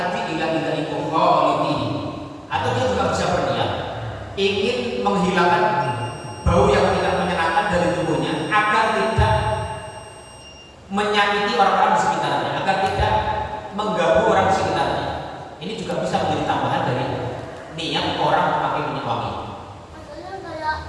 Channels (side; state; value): both; identical; correlation 1.00